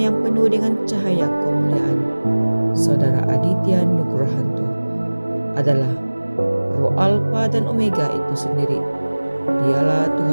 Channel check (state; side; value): inverted; both; correlation -1.00